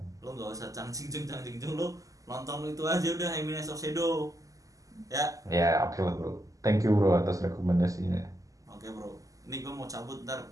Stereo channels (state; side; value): late; left; 0.17 ms